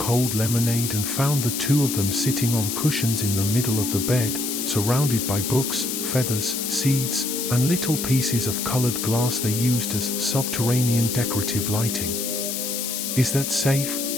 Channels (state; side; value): noise; left; hiss, 3 dB below the sound